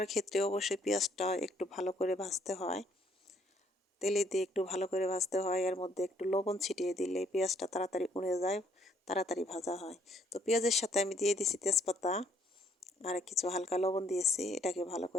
ক্ষেত্রে অবশ্যই পেঁয়াজটা একটু ভালো করে ভাজতে হয়, তেলে দিয়ে একটু ভালো করে ভাজতে হয়। এর মধ্যে একটু লবণ ছিটিয়ে দিলে পেঁয়াজটা তাড়াতাড়ি উড়ে যায়, তাড়াতাড়ি ভাজা হয়। তো পেঁয়াজের সাথে আমি দিয়ে দিছি তেজপাতা আর কিছু হালকা লবণ দিয়েছি, এটাকে ভালো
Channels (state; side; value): normal; both; correlation 0.66